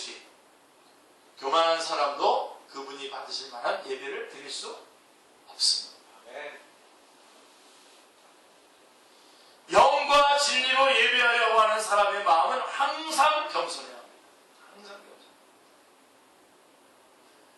교만한 사람도 그분이 받으실 만한 예배를 드릴 수 없습니다. 영과 진리로 예배하려고 하는 사람의 마음은 항상 겸손해야 합니다. 항상 겸손.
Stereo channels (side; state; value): both; identical; correlation 1.00